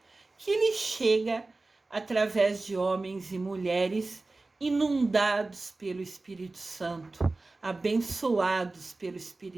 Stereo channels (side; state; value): left; quieter; 3.3 dB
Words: que lhe chega através de homens e mulheres inundados pelo Espírito Santo, abençoados pelo